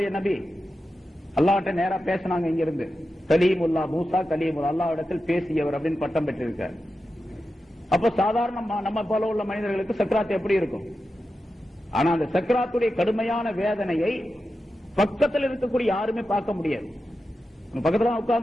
நபி, அல்லாஹ்ட்ட நேரா பேசினாங்க. இங்க இருந்து கலீமுல்லா, மூசா கலீமுல்லா, அல்லாஹ்விடத்தில் பேசியவர் அப்படின்னு பட்டம் பெற்றிருக்கார். அப்ப சாதாரண நம்ம போல உள்ள மனிதர்களுக்கு சக்ராத் எப்படி இருக்கும்? ஆனா அந்த சக்ராத்துடைய கடுமையான வேதனையை பக்கத்தில் இருக்கக்கூடிய யாருமே பார்க்க முடியாது. பக்கத்துல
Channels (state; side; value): normal; both; correlation 0.91